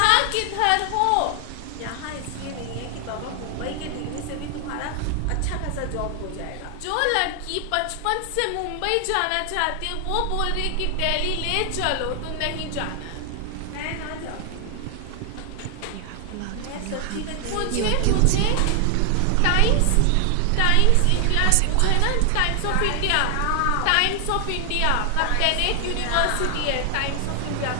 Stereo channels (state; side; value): different; both; correlation 0.00